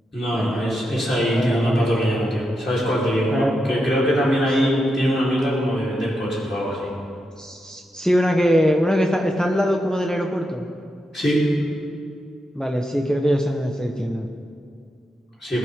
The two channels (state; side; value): normal; both; correlation 0.85